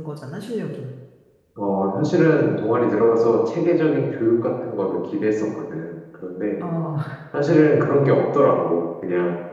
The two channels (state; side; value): identical; both; correlation 1.00